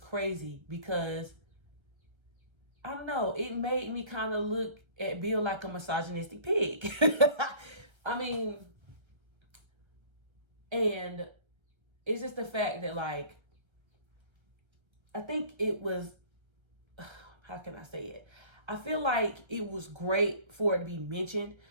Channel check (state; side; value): late; left; 1.3 ms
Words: because I don't know, it made me kind of look at Bill like a misogynistic pig. I mean, and it's just the fact that, like, I think it was, how can I say it? I feel like it was great for it to be mentioned